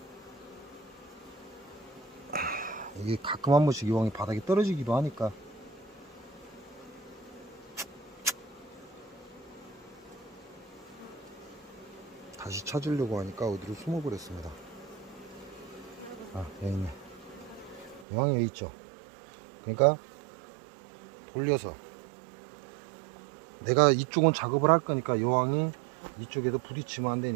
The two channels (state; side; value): drops out; left; at 18.1 s